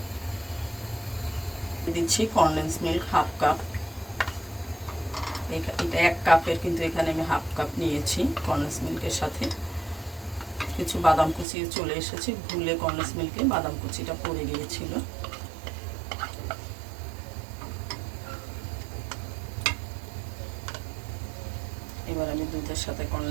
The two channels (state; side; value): drops out; left; at 11.5 s